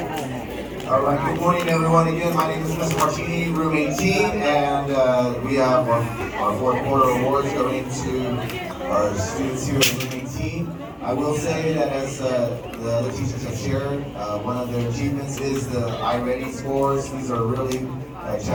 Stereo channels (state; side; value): identical; both; correlation 1.00